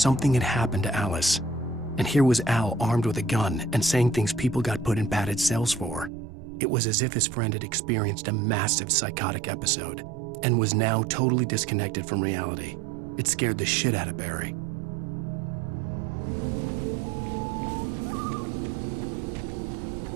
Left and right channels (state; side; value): drops out; left; at 6.1 s